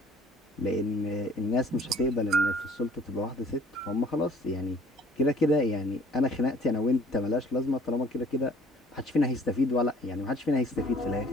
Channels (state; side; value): normal; both; correlation 0.55